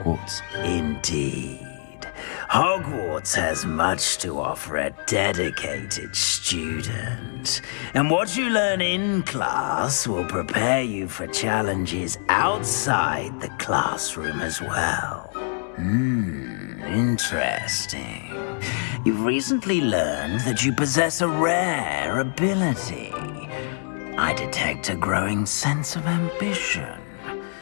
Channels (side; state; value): right; silent; 62 dB below the other